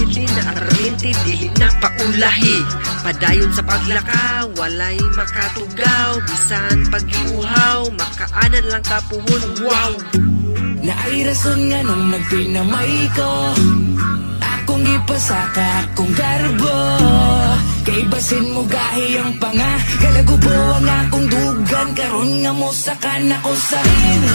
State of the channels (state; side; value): inverted; both; correlation -1.00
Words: na araminti dili na paulahi. Padayon sa paglaka walay makatugaw, bisan pag-iuhaw makaanan lang kapuhon. Wow! Na ay rason nga nung nagpinamay ko, akong ipasaka akong garbo. Kay basin mo gahi ang panga, kalagubo ang akong dugan. Karon nga mo sakan ako sa